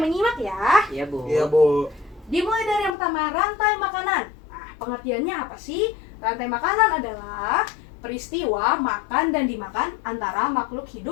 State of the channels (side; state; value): right; drops out; at 2.9 s